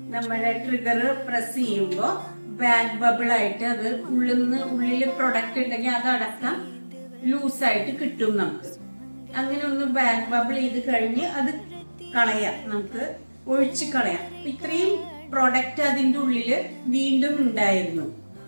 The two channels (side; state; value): both; inverted; correlation -1.00